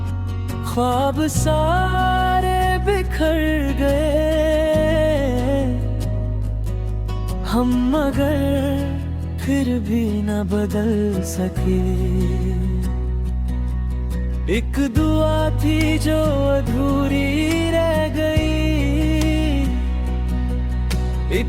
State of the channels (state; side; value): identical; both; correlation 1.00